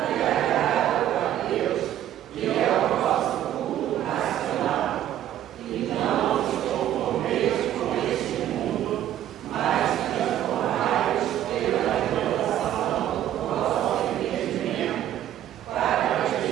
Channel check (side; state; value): left; quieter; 11.7 dB